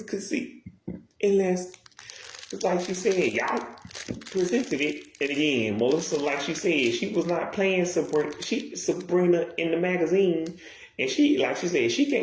could see. Unless, just like she said, y'all presented it. And again, Melissa, like she said, she was not playing Sabrina in the magazine. And she, like she said, she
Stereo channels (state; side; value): identical; both; correlation 1.00